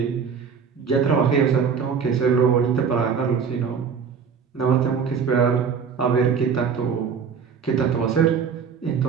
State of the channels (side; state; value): left; quieter; 6.4 dB